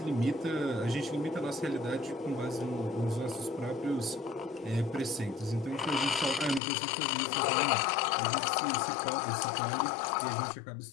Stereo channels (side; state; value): right; drops out; at 6.6 s